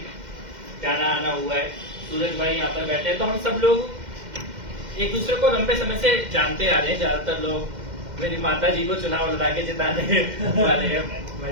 जाना आना हुआ है। सूरज भाई यहाँ पर बैठे हैं, तो हम सब लोग एक दूसरे को लंबे समय से जानते आ रहे हैं। ज्यादातर लोग मेरी माता जी को चुनाव लड़ा के जिताने वाले हैं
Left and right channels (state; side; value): late; left; 2.1 ms